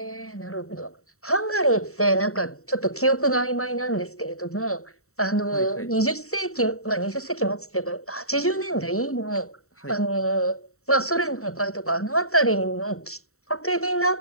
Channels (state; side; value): late; right; 0.64 ms